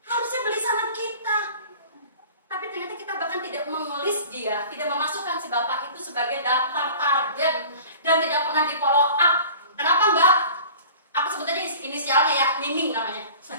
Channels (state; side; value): inverted; both; correlation -0.43